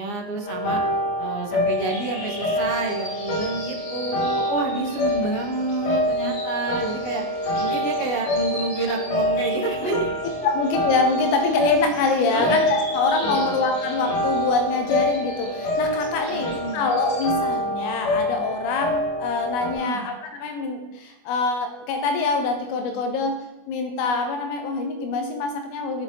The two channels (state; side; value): late; right; 24 ms